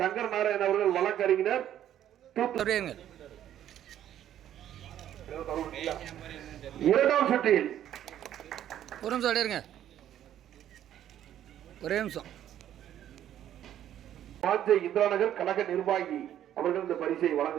நாராயணன் அவர்கள், வழக்கறிஞர். இரண்டாம் சுற்றில் ஒரு நிமிஷம் அடையிருங்க, ஒரே நிமிஷம். வாஞ்சை இந்திராநகர் கழக நிர்வாகி அவர்கள் இந்த பரிசை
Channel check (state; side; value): quieter; left; 11.2 dB